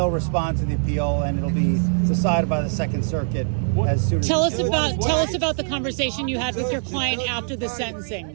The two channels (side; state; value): left; silent; digital silence